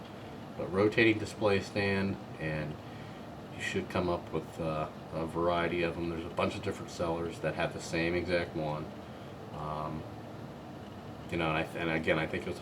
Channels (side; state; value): both; identical; correlation 1.00